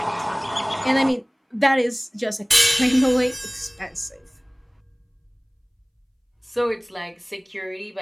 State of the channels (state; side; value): identical; both; correlation 1.00